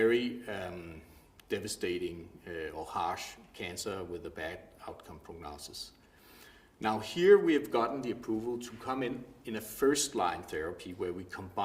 devastating or harsh cancer with a bad outcome prognosis. Now here we have gotten the approval to come in a first-line therapy where we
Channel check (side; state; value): both; identical; correlation 1.00